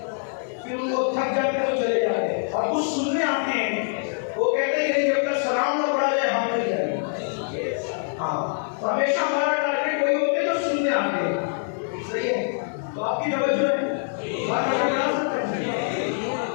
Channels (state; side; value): silent; right; 62 dB below the other